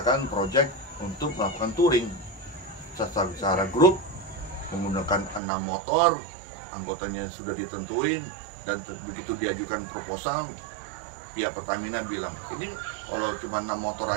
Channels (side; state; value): left; drops out; at 5.4 s